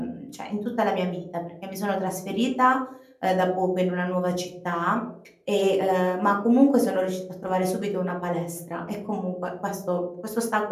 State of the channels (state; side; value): identical; both; correlation 1.00